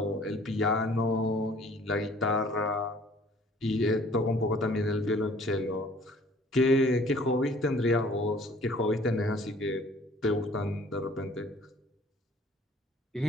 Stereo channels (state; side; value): normal; both; correlation 0.54